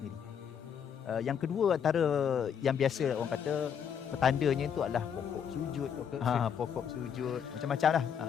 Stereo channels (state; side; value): quieter; right; 7.9 dB